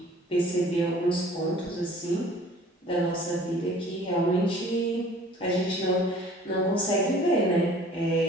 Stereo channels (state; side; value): normal; both; correlation 0.50